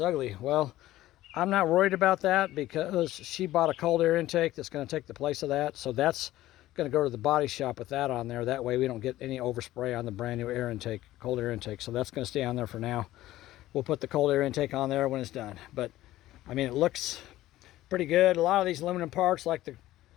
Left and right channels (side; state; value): right; quieter; 15.4 dB